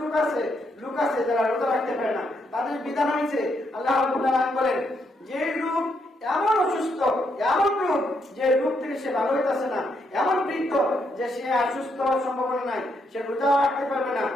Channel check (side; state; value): both; normal; correlation 0.77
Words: লোক আছে যারা রোজা রাখতে পারে না, তাদের বিধান হয়েছে আল্লাহ রাব্বুল আলামিন বলেন যে লোক এমন অসুস্থ, এমন রোগ যে রোগ থেকে সে ভালো হইতেছে না, এমন বৃদ্ধ যে সে সুস্থ হওয়ার সম্ভাবনা নাই, সে রোজা রাখতে পারবে না,